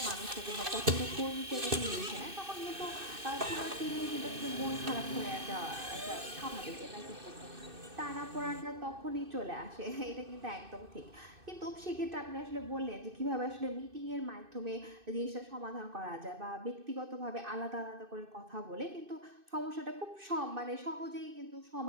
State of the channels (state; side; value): late; left; 2.6 ms